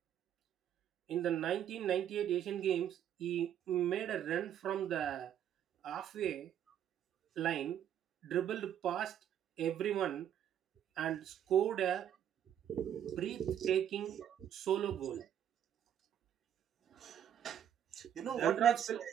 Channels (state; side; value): quieter; left; 9.9 dB